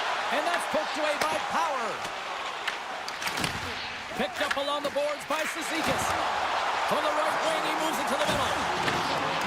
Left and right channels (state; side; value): identical; both; correlation 1.00